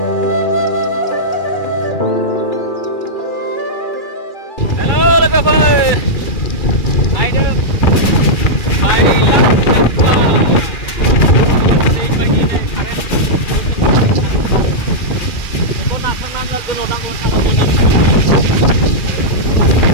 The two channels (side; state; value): right; late; 2.4 ms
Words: Halo, logover. Naik dulu.